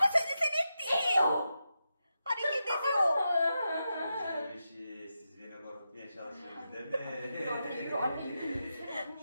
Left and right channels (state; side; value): inverted; both; correlation -0.88